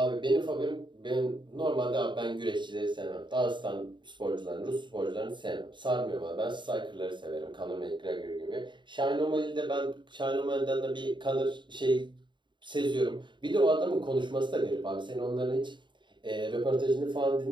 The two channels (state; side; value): late; left; 0.23 ms